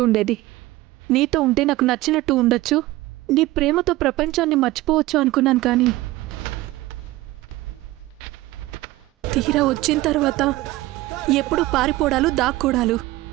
ఉండేది. నీతో ఉంటే నాకు నచ్చినట్టు ఉండొచ్చు. నీ ప్రేమతో ప్రపంచాన్ని మర్చిపోవచ్చు అనుకున్నాను, కానీ తీరా వచ్చిన తర్వాత ఎప్పుడు పారిపోవడాలు, దాక్కోడాలు.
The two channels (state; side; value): quieter; left; 18.1 dB